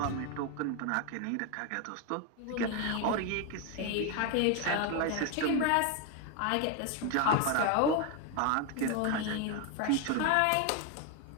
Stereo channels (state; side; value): different; both; correlation 0.01